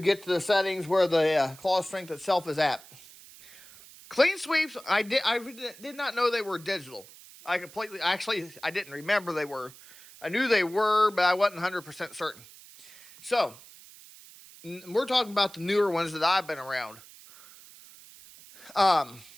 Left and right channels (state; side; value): noise; right; hiss, 20 dB below the sound